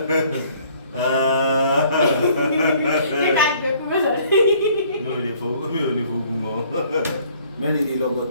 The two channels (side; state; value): both; inverted; correlation -0.59